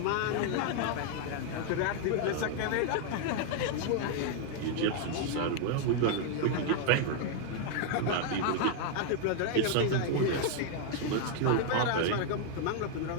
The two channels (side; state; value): both; different; correlation 0.00